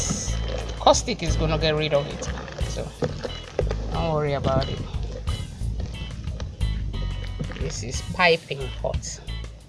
caustic is gonna get rid of it. So don't worry about it. This is piping hot.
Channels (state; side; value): identical; both; correlation 1.00